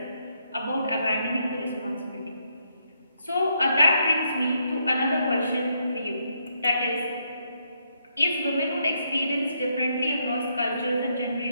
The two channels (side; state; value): both; inverted; correlation -0.76